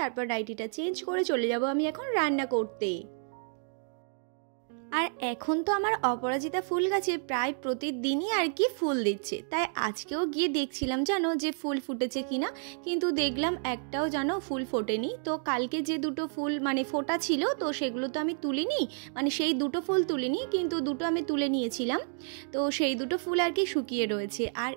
তারপর নাইটিটা চেঞ্জ করে চলে যাব আমি এখন রান্না করতে। আর এখন তো আমার অপরাজিতা ফুল গাছে প্রায় প্রতিদিনই আর কি ফুল দিচ্ছে, তাই আজকেও গিয়ে দেখছিলাম জানো যে ফুল ফুটেছে কিনা, কিন্তু দেখলাম একটাও জানো ফুল ফোটেনি। তো কালকে যে দুটো ফুল মানে ফোটা ছিল তো সেগুলো তো আমি তুলিনি, মানে সেই দুটো ফুল তুলিনি, কিন্তু দুটো আমি তুলে নিয়েছিলাম। তো সেই দুটো ফুল আর কি শুকিয়ে রয়েছে। আর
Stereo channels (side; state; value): left; silent; 58 dB below the other